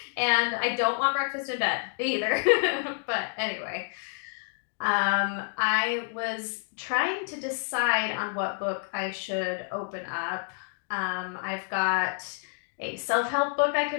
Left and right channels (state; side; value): silent; right; 59 dB below the other